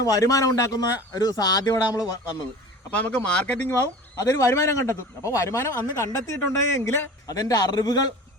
വരുമാനം ഉണ്ടാക്കുന്ന ഒരു സാധ്യത നമ്മൾ വന്നത്. അപ്പോൾ നമുക്ക് മാർക്കറ്റിംഗ് ആവും, അതൊരു വരുമാനം കണ്ടെത്തും. അപ്പോൾ വരുമാനം അന്ന് കണ്ടെത്തിയിട്ടുണ്ടെങ്കിൽ അതെൻ്റെ അറിവുകൾ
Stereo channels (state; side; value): normal; both; correlation 0.38